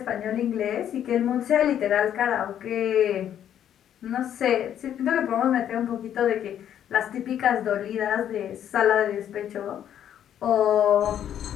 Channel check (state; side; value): quieter; right; 10.1 dB